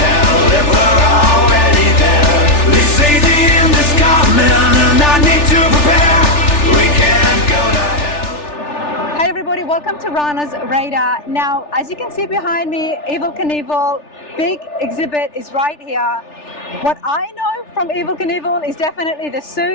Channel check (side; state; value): right; late; 3.4 ms